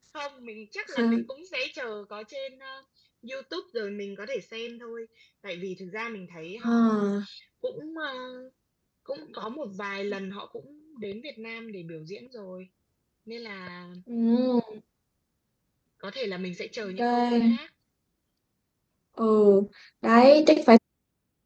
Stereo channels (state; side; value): identical; both; correlation 1.00